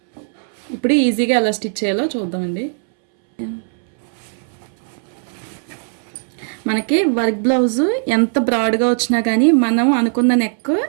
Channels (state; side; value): silent; left; 67 dB below the other